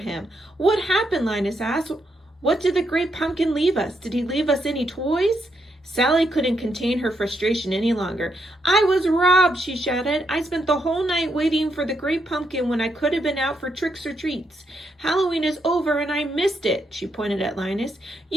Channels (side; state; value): both; normal; correlation 0.79